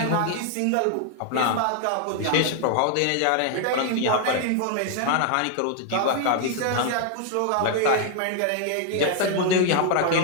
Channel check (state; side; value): different; both; correlation 0.00